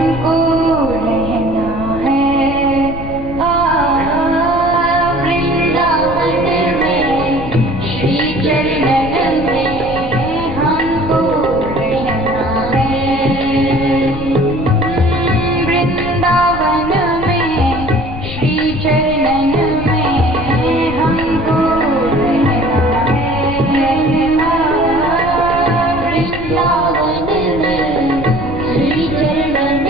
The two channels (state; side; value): noise; left; rumble, 10 dB below the sound